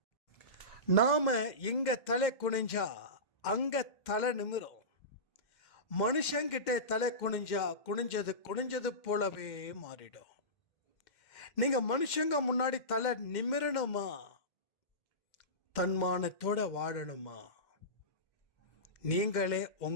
நாம இங்க தலை குனிஞ்சா அங்க தலை நிமிரும். மனுஷங்கிட்ட தலை குனிஞ்சா குனிஞ்சது போலவே மாறிடும். நீங்க மனுஷங்க முன்னாடி தலை நிமிரணுமா, தன்மானத்தோட வாழணுமா, நீங்களே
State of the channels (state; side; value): late; right; 2.1 ms